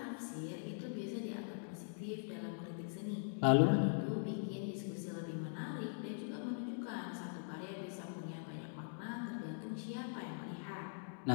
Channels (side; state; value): right; silent; digital silence